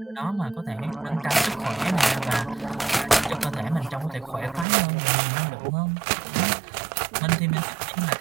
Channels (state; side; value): drops out; left; at 4.7 s